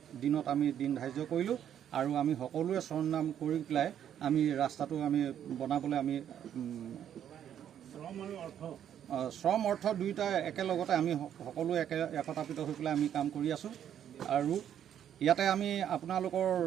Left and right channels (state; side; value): quieter; left; 9.8 dB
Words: দিনত আমি দিন ধাৰ্য কৰিলোঁ আৰু আমি সকলোৱে শ্ৰমদান কৰি পেলাই আমি ৰাস্তাটো আমি বনাবলৈ আমি শ্ৰম অৰ্থ দুয়োটা একেলগতে আমি সকলোৱে একতাপিত হৈ পেলাই আমি কাম কৰি আছোঁ। আৰু ইয়াতে আমি আপোনালোকৰ